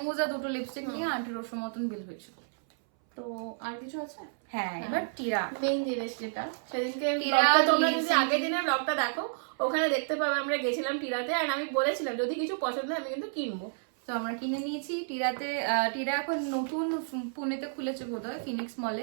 আর দুটো লিপস্টিক নিয়ে 1800 মতন বিল হয়েছিল। তো আর কিছু আছে? হ্যাঁ, এবার টিরা। মেইন জিনিস যেটা সেদিনকে টিরা ব্লগটা তোমরা যদি নিয়েছি। আগের দিনের ব্লগটা দেখো ওখানে দেখতে পাবে আমরা গেছিলাম টিরাতে, আর আমি বলেছিলাম যদি কিছু পছন্দ হয় আমি কিন্তু কিনবো। তো আমরা কিনে নিয়েছি টিরাতে। টিরা এখন নতুন পুনেতে খুলেছে বোধহয়, ফিনিক্স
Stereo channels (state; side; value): silent; left; 57 dB below the other